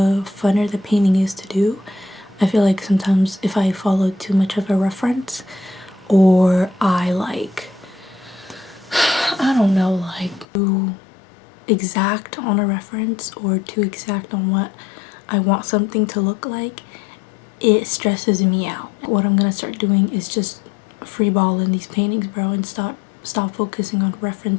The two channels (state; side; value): drops out; right; at 10.5 s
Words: funner the painting is to do. I feel like sometimes if I follow too much of a reference, or I like, I don't know, like too exact on a reference or too exact on what I want something to look like, it stresses me out. What I'm gonna start doing is just freeballing these paintings, bro, and stop focusing on